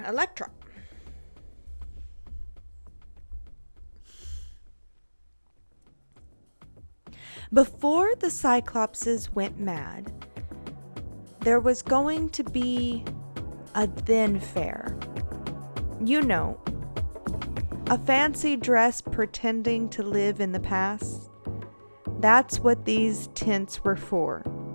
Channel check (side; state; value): both; inverted; correlation -1.00